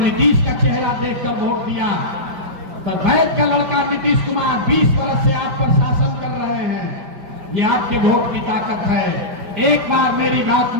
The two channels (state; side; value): late; left; 5.0 ms